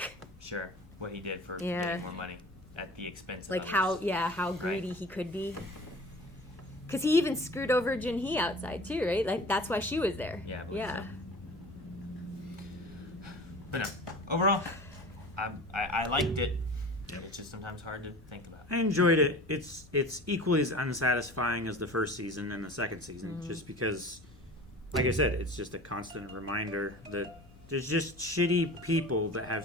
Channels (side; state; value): both; normal; correlation 0.40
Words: sure. What he did for getting more money at the expense of like others. how greedy he could be. Because he even screwed over Junhee outside too, right? Like that's why she was there. Yeah. Yeah. But no, overall, I liked it. It's just sometimes hard to think about. I enjoyed it. It's equally as unsatisfying as the first season and the second season, just because, like I said, it's just a constant reminder that there's just shitty people that